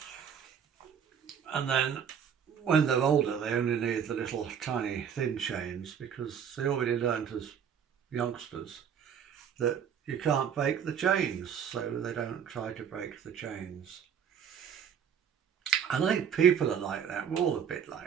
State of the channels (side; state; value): left; quieter; 7.9 dB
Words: And then when they're older, they only need the little tiny thin chains because they already learned as youngsters that you can't break the chains, so they don't try to break the chains. And I think people are like that. We're all a bit